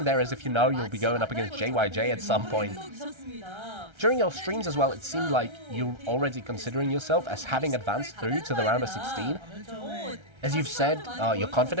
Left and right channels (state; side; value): late; left; 1.3 ms